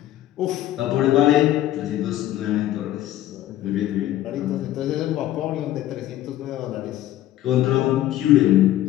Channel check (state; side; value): quieter; right; 13.6 dB